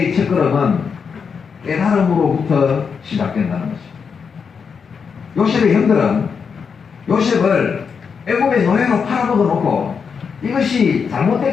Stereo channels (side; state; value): right; quieter; 6.1 dB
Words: 첫걸음은 깨달음으로부터 시작된다는 것입니다. 요셉의 형들은 요셉을 애굽의 노예로 팔아먹어 놓고 이것이